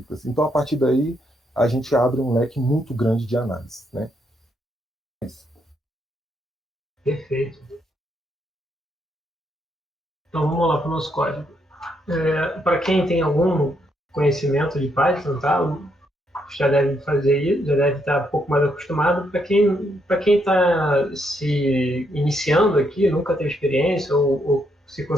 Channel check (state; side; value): normal; both; correlation 0.76